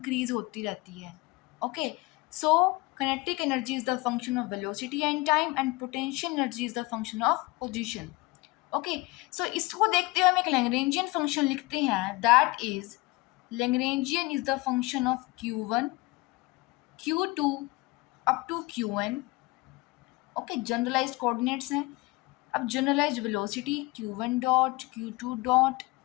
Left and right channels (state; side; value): quieter; right; 22.8 dB